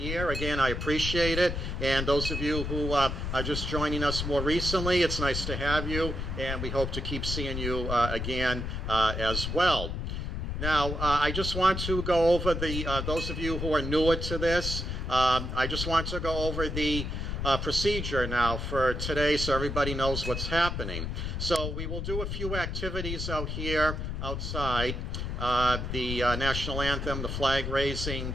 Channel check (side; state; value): left; noise; rumble, 3 dB below the sound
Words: again, I appreciate it. And those of you who are just joining us more recently, it's nice to have you, and we hope to keep seeing you again as well. Now, I just want to go over those of you who are newer to this, I just want to go over the procedure now for today so everybody knows what's happening. So we will do a few activities out here outside. The national anthem, the flag raising,